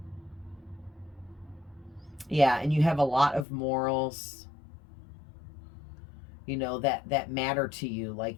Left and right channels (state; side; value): drops out; right; at 3.5 s